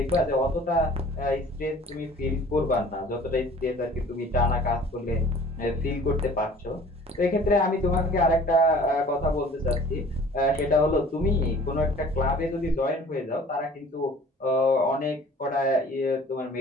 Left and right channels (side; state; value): both; normal; correlation 0.49